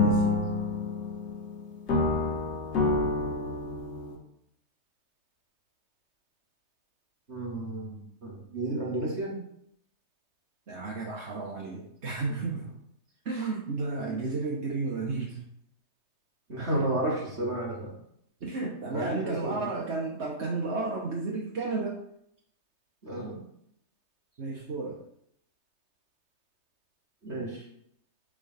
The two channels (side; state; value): left; late; 3.2 ms